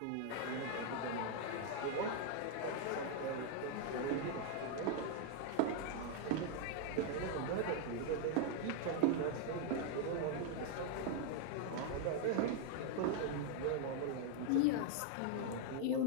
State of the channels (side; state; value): both; different; correlation 0.00